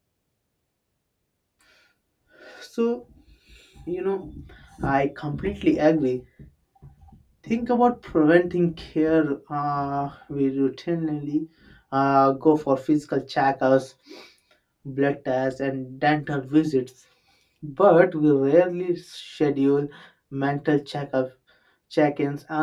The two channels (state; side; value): identical; both; correlation 1.00